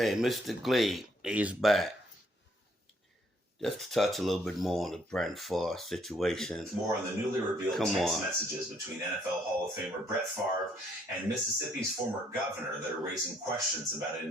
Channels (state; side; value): normal; both; correlation 0.67